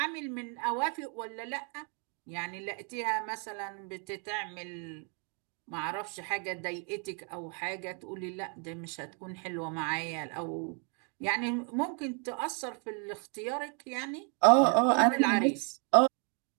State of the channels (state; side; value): quieter; left; 39.2 dB